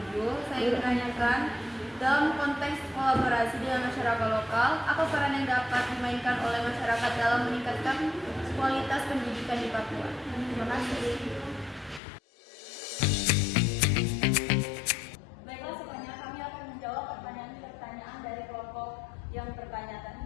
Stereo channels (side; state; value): right; drops out; at 12.0 s